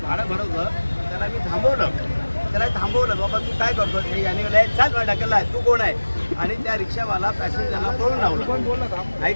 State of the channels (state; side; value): inverted; both; correlation -1.00